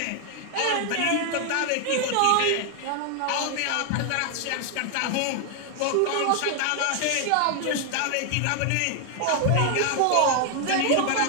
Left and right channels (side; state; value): both; different; correlation 0.00